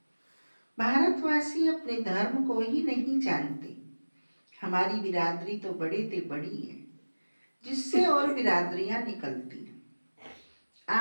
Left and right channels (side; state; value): both; inverted; correlation -1.00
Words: भारतवासी अपने धर्म को ही नहीं जानते। हमारी बिरादरी तो बड़े ते बड़ी है, जिससे और बिरादरियां निकलती हैं।